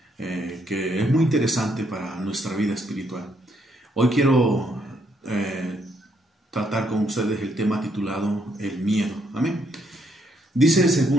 que es muy interesante para nuestra vida espiritual. Hoy quiero tratar con ustedes el tema titulado el miedo. Amén. Dice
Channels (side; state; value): both; normal; correlation 0.73